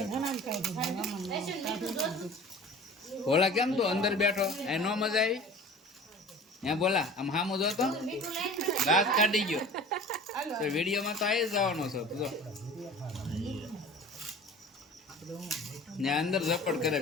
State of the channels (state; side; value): normal; both; correlation 0.41